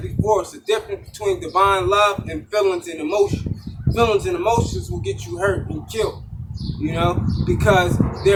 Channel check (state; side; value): identical; both; correlation 1.00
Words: before, it's the difference between divine love and feelings and emotions. Feelings and emotions will get you hurt and killed, you know, because